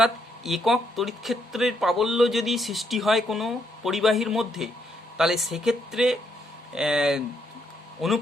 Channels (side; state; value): both; normal; correlation 0.75